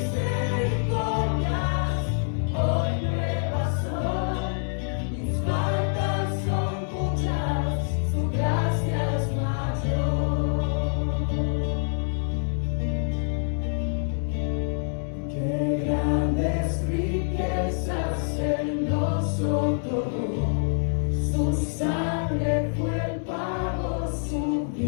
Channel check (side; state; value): right; silent; digital silence